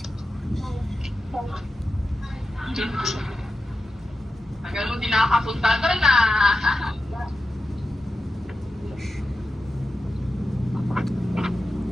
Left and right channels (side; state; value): both; normal; correlation 0.91